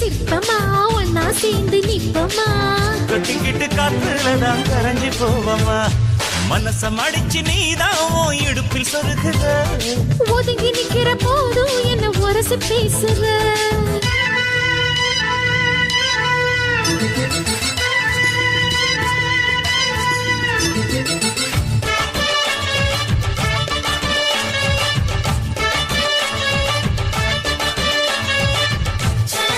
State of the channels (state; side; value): identical; both; correlation 1.00